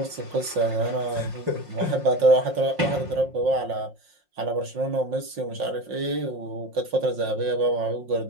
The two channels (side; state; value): left; late; 5.6 ms